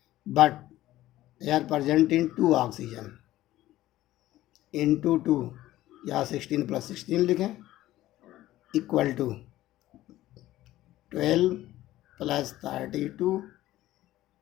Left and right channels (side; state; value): right; quieter; 15.2 dB